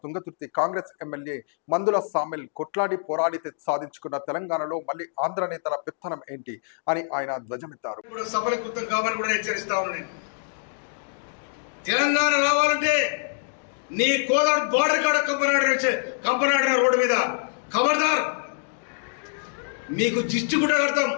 తుంగతుర్తి కాంగ్రెస్ ఎమ్మెల్యే మందుల సామిల్ కొట్లాడి పోరాడితే సాధించుకున్న తెలంగాణలో మళ్ళీ ఆంధ్ర నేతల పెత్తనం ఏంటి అని ఆయన ధ్వజమెత్తారు. తెలంగాణ రావాలంటే నీ కోదాడు బార్డర్ కాడ కంపనాడు రోడ్డు మీద ఖబర్దార్, మీకు జిస్టు కూడా కడతాం.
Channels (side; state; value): right; silent; digital silence